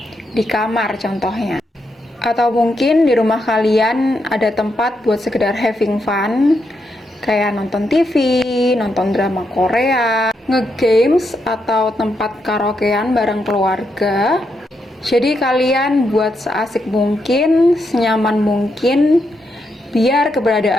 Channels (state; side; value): normal; both; correlation 0.81